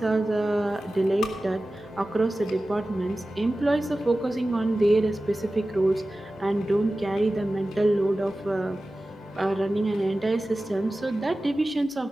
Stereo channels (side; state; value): both; normal; correlation 0.96